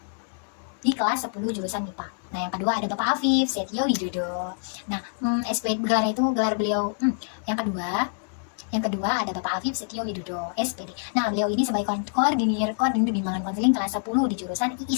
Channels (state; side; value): silent; right; digital silence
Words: 10 jurusan MIPA. Nah, yang kedua ada Bapak Afif Setio Widodo. Nah, gelar beliau yang kedua ada Bapak Afif Setio Widodo, SPD. Nah, beliau ini sebagai koordinir bimbingan konseling kelas 10 di jurusan